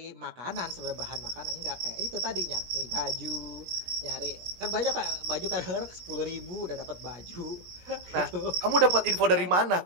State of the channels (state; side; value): late; left; 17 ms